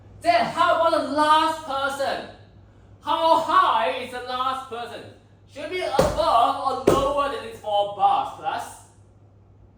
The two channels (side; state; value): both; identical; correlation 1.00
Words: Then how about the last person? How high is the last person? Should be above or lower than these 4 bars, plus?